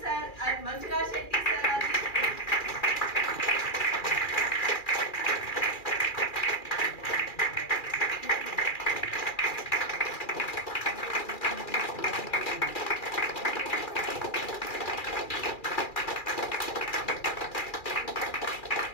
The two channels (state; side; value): late; right; 2.4 ms